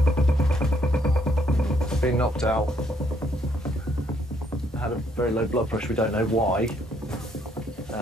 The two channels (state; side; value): normal; both; correlation 0.69